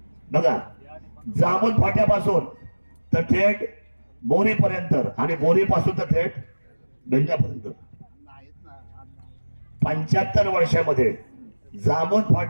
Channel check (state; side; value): inverted; both; correlation -1.00